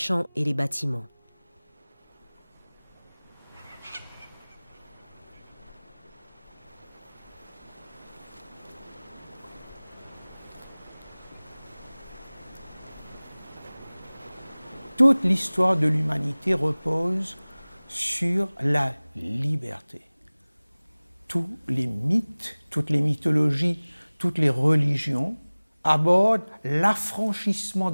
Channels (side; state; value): both; inverted; correlation -1.00